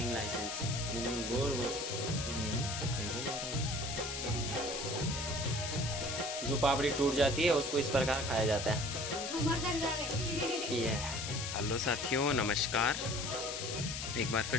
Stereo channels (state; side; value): noise; left; hiss, 5 dB below the sound